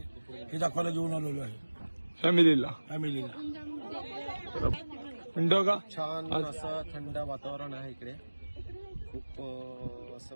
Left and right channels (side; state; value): both; inverted; correlation -1.00